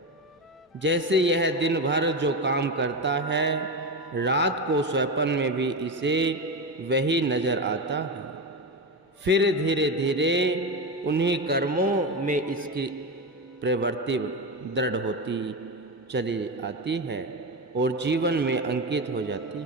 जैसे यह दिन भर जो काम करता है रात को स्वप्न में भी इसे वही नजर आता है। फिर धीरे धीरे उन्हीं कर्मों में इसकी प्रवृत्ति दृढ़ होती चली आती है और जीवन में अंकित हो जाती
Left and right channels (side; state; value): both; normal; correlation 0.16